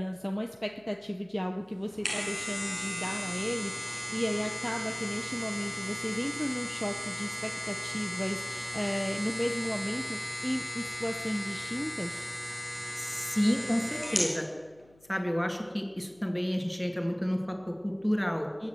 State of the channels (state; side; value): noise; left; hum, 29 dB below the sound